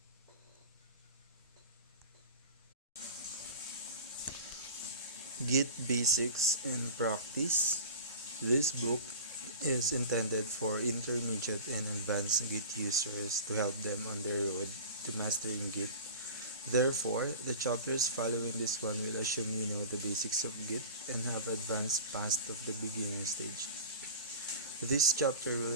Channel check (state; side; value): inverted; both; correlation -0.36